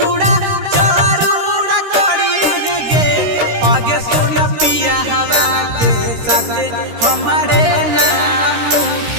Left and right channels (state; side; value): late; left; 13 ms